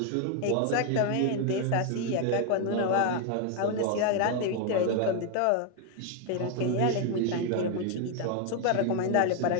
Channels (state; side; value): different; both; correlation 0.01